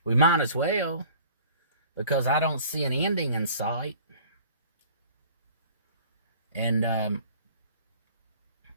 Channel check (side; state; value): both; inverted; correlation -0.49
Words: We might as well, because I don't see an ending in sight. And,